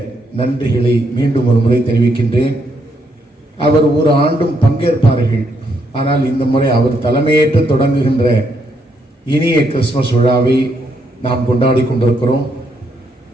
நன்றிகளை மீண்டும் ஒரு முறை தெரிவிக்கின்றேன். அவர் ஒரு ஆண்டும் பங்கேற்பார்கள், ஆனால் இந்த முறை அவர் தலைமையேற்று தொடங்குகின்ற இனிய கிறிஸ்துமஸ் விழாவை நாம் கொண்டாடி கொண்டிருக்கிறோம்.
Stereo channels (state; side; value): normal; both; correlation 0.76